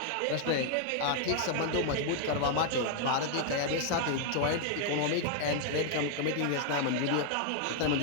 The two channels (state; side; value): different; both; correlation 0.00